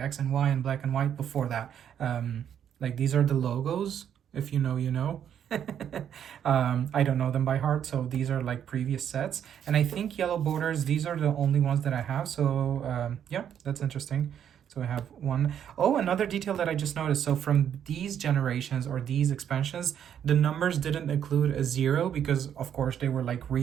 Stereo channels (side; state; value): left; quieter; 9.2 dB